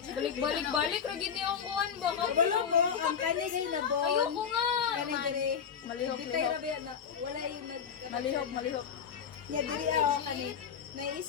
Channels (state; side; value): quieter; right; 7.3 dB